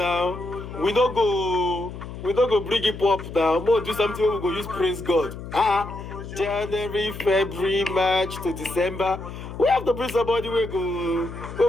We don't go bring it up now. More do something we go use praise God. January, February, March to December. We have to bring somebody we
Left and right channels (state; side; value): noise; left; hum, 11 dB below the sound